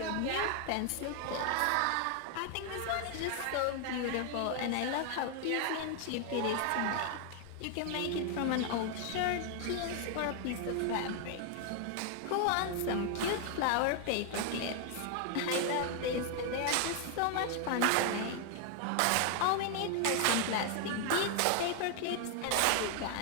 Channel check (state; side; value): different; both; correlation 0.00